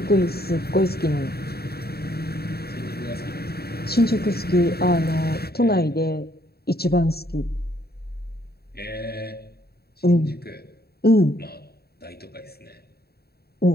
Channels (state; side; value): late; right; 0.46 ms